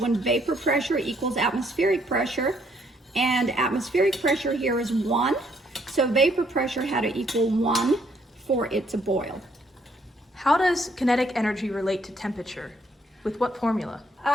vapor pressure equals atmospheric pressure, and atmospheric pressure here is 1. So vapor pressure had to equal 1 for it to boil. How does kinetic energy relate to temperature? With what formula?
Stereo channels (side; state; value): both; normal; correlation 0.69